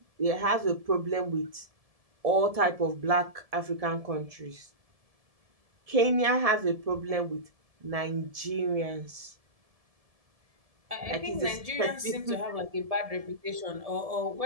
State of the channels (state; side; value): late; left; 1.7 ms